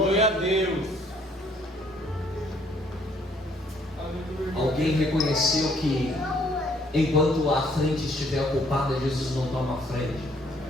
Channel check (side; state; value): both; normal; correlation 0.64